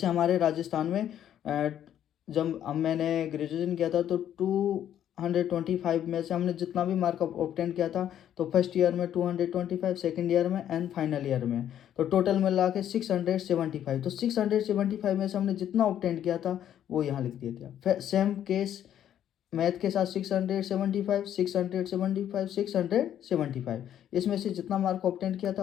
हमारे राजस्थान में जब मैंने ग्रेजुएशन किया था तो 225 में से हमने जितना भी मार्क ऑब्टेन किया था, तो फर्स्ट ईयर में 225, सेकेंड ईयर में एंड फाइनल ईयर में, तो टोटल मिला के 675। तो 675 में से हमने जितना ऑब्टेन किया था वो यहाँ लिख दिया था। फिर सेम केस मैथ के साथ 675, 675, 675, इसमें से जितना मार्क ऑब्टेन किया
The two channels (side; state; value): right; quieter; 10.5 dB